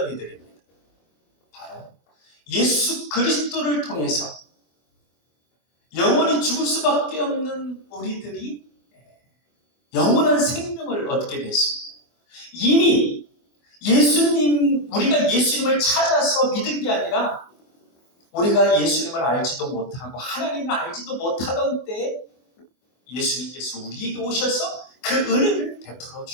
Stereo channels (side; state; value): right; late; 24 ms